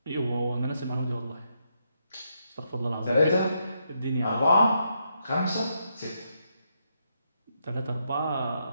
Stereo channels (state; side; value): inverted; both; correlation -0.80